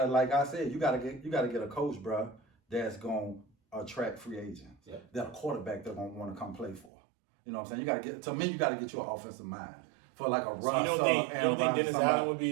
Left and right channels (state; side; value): drops out; left; at 6.9 s